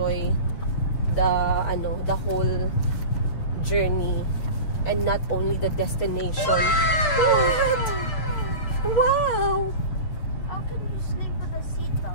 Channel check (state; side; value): late; right; 6.7 ms